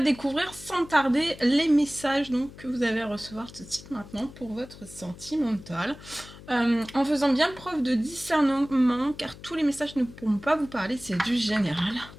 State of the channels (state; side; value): noise; left; hum, 18 dB below the sound